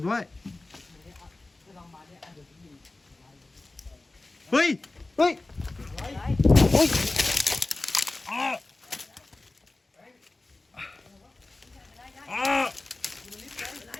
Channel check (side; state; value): right; quieter; 3.0 dB